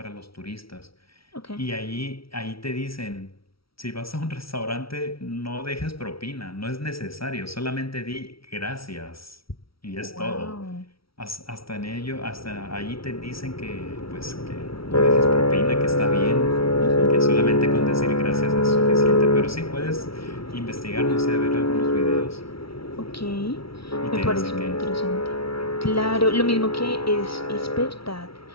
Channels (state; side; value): late; right; 0.75 ms